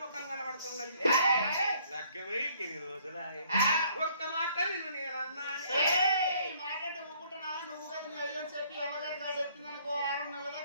ముఖం కనబడుతున్నది లగ్గమై ఎన్ని రోజులాయ ఒక్క మాట నిన్ను నేనన్నాను మాట అంటే ఊకుంటున్నా నువ్వు కదా నీ అయ్యని చెప్పి అమ్మగారి కాదు ఎత్తిందనుకో 6 నెలల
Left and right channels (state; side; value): inverted; both; correlation -0.62